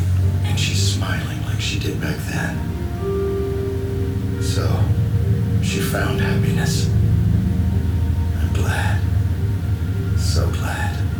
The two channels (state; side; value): identical; both; correlation 1.00